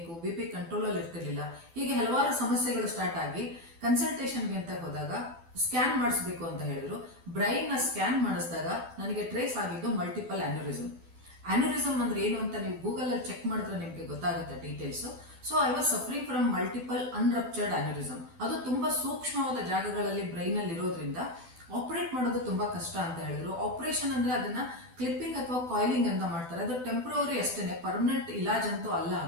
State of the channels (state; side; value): late; left; 12 ms